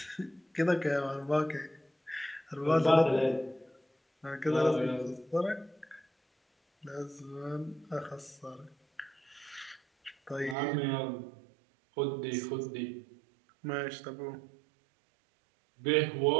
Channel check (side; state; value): left; drops out; at 10.6 s